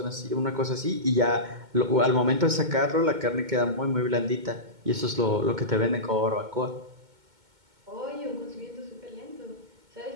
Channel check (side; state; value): left; late; 2.2 ms